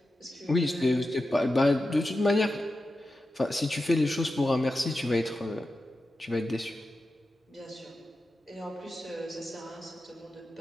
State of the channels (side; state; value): both; normal; correlation 0.91